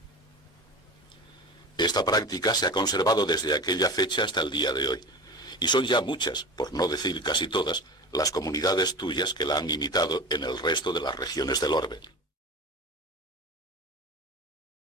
Esta práctica se ha conservado desde aquella fecha hasta el día de hoy, y son ya muchas, por no decir casi todas, las comunidades tuyas que la han imitado en el resto de las regiones del orbe.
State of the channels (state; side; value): normal; both; correlation 0.32